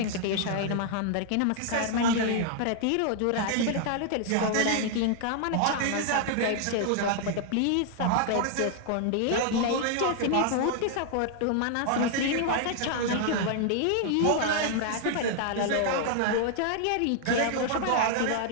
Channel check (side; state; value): both; different; correlation 0.00